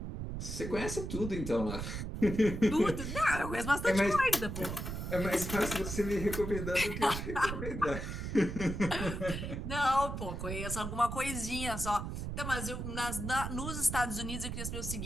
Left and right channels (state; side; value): noise; right; rumble, 5 dB below the sound